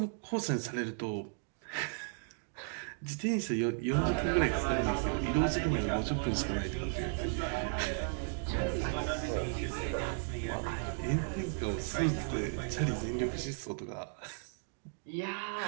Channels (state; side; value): silent; left; 54 dB below the other